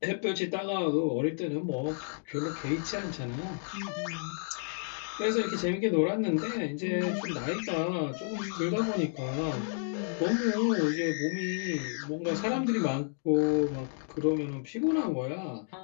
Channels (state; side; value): silent; right; digital silence